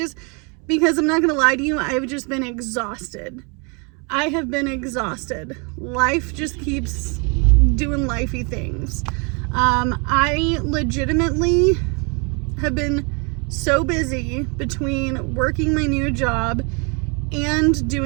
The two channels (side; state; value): left; quieter; 33.7 dB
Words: because I'm not going to lie to you, I've just been exhausted. I have been exhausted. Life just keeps doing lifey things. I legitimately have been so busy between working my new job and